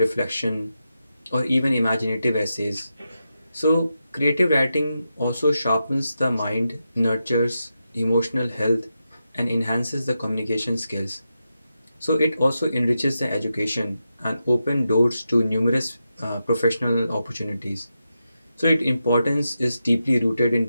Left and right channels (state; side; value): inverted; both; correlation -0.88